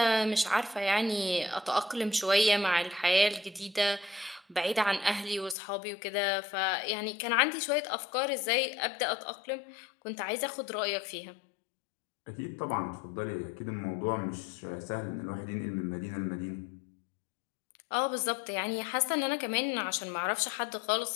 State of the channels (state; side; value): drops out; right; at 5.6 s